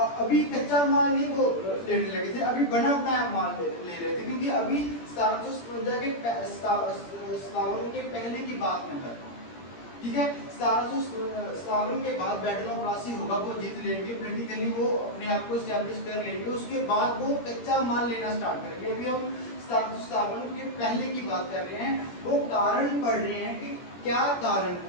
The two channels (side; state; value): right; late; 17 ms